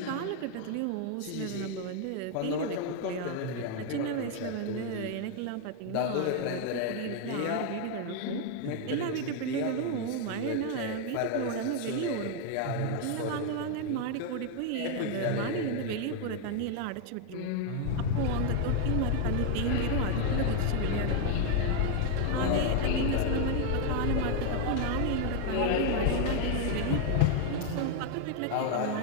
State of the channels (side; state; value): both; different; correlation 0.01